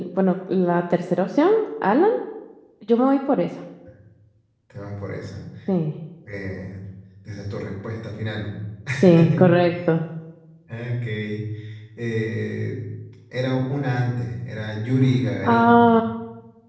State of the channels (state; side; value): identical; both; correlation 1.00